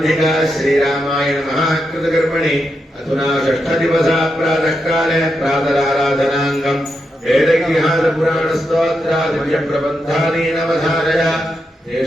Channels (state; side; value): normal; both; correlation 0.85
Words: श्रीरामायण महाकृतकर्मणि अधुना षष्ठदिवसा प्रातःकाले प्रातराराधनाङ्गम् वेदगृहादिपुराणस्तोत्रादिव्यप्रबन्धानि नवधारय